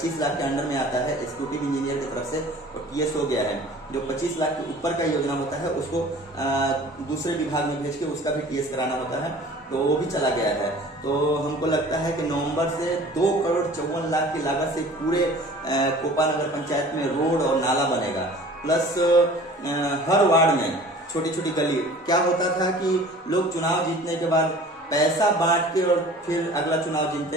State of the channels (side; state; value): both; normal; correlation 0.45